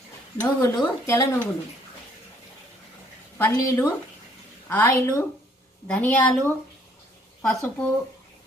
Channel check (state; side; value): normal; both; correlation 0.63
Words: నువ్వులు, తెల్ల నువ్వులు, పల్లీలు, ఆయిలు, ధనియాలు, పసుపు,